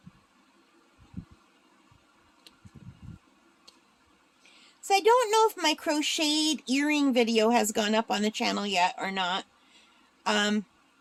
So I don't know if my crocheted earring video has gone up on the channel yet or not.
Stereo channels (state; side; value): identical; both; correlation 1.00